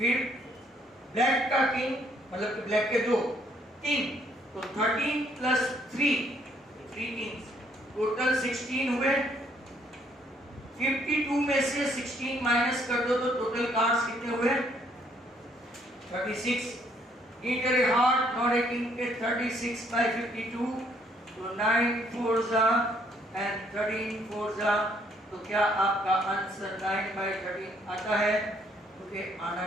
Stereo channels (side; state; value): both; normal; correlation 0.67